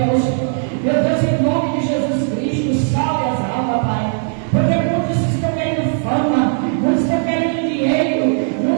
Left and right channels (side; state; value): left; silent; digital silence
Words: Meu Deus, em nome de Jesus Cristo, salve as almas, Pai. Porque muitos estão querendo fama, muitos estão querendo dinheiro,